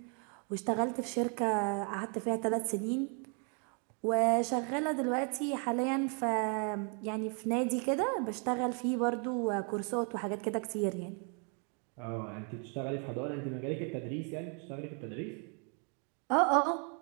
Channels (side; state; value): left; quieter; 38.8 dB